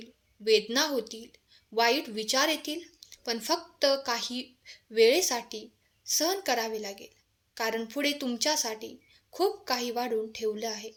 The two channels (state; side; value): identical; both; correlation 1.00